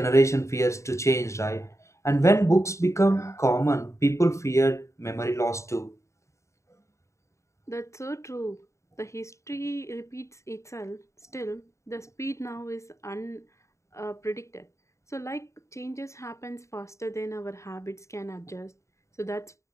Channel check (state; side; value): late; right; 0.14 ms